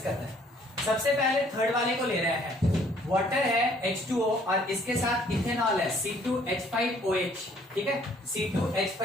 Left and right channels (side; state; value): both; normal; correlation 0.61